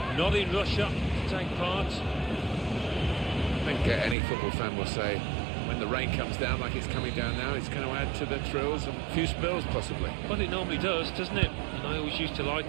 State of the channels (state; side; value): drops out; left; at 4.2 s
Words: not in Russia to take part. I think any football fan will say when the rain comes down like it's coming down now, it's going to add to the thrills and a few spills possibly. Well, it normally does, doesn't it? And I always used to